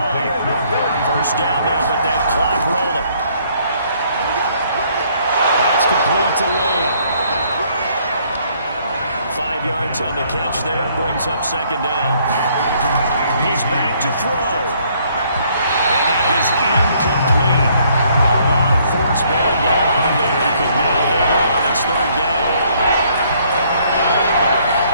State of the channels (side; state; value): both; inverted; correlation -0.65